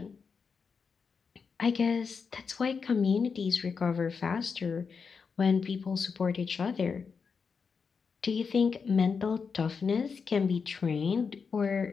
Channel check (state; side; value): quieter; right; 5.6 dB